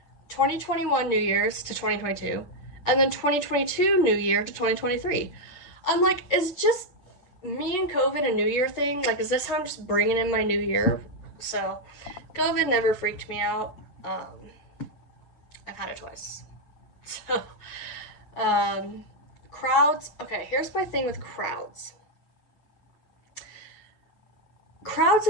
2021 New Year's to 2022, and then 2022 New Year to 2023. I'm like, is just me and COVID a New Year thing? Like, is this how I'm just bringing in my New Year? So, COVID never freaked me out. I've had it twice. So, crowds. Okay, here's my thing with crowds. Crowds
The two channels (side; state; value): right; late; 8.2 ms